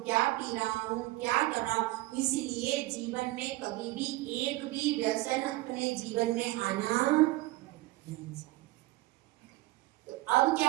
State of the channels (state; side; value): quieter; left; 19.2 dB